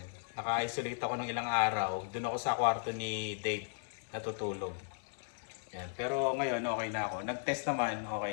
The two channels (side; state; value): right; silent; digital silence